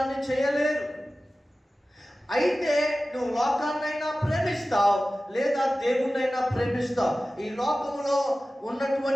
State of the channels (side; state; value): both; normal; correlation 0.96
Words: చేయలేరు. అయితే నువ్వు లోకాన్నైనా ప్రేమిస్తావు, లేదా దేవుణ్ణైనా ప్రేమిస్తావు. ఈ లోకంలో